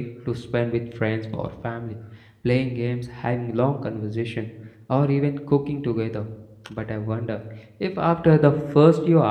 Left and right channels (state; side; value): identical; both; correlation 1.00